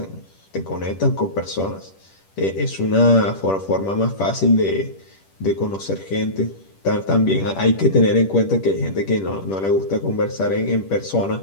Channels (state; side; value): late; right; 10 ms